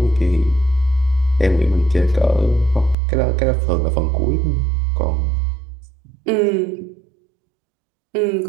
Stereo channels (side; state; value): left; drops out; at 3.0 s